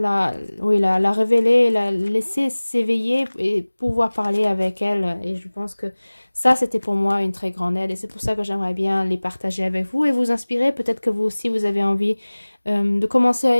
révéler, la laisser s'éveiller et pouvoir parler avec elle. Et je pense que ça, c'était pour moi une très grande aide. Et c'est pour ça que j'aimerais bien les partager avec vous et vous inspirer. Peut-être que vous aussi, vous avez envie de commencer à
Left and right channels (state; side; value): inverted; both; correlation -1.00